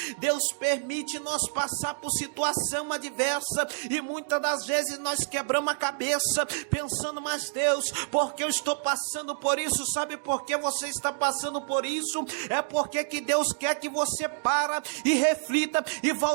Deus permite nós passar por situação adversa, e muitas das vezes nós quebramos a cabeça pensando: mas Deus, porque eu estou passando por isso? Sabe por que você está passando por isso? É porque que Deus quer que você para e reflita e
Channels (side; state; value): left; silent; digital silence